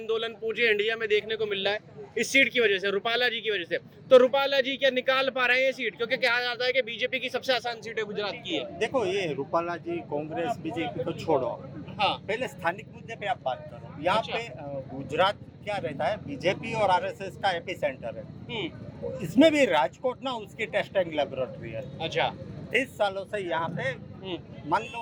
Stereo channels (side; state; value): both; identical; correlation 1.00